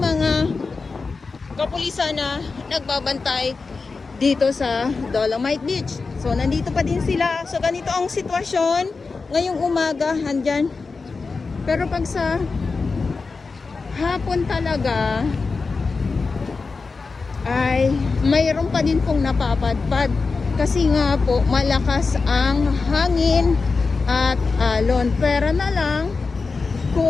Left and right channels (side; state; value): right; quieter; 4.3 dB